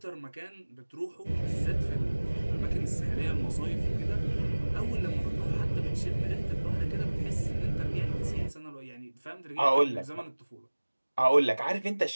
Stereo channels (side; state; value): both; inverted; correlation -1.00